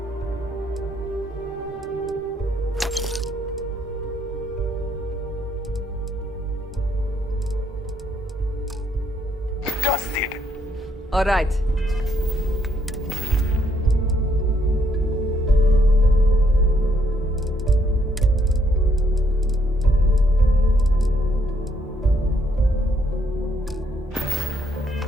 Dusted. All right.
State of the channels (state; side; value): normal; both; correlation 0.71